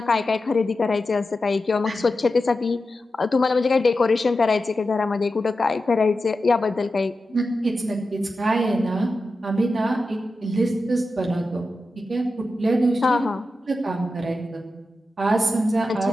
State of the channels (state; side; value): normal; both; correlation 0.91